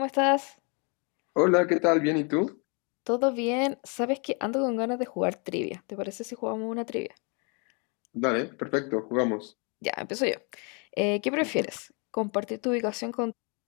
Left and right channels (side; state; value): right; quieter; 34.5 dB